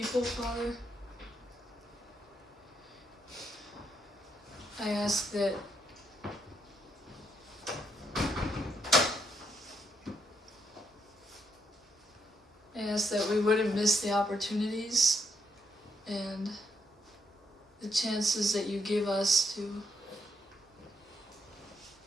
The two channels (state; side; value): normal; both; correlation 0.77